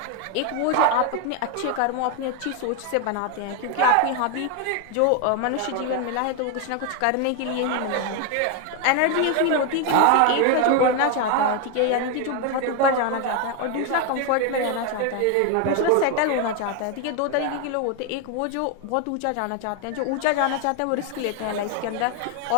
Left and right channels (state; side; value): different; both; correlation 0.01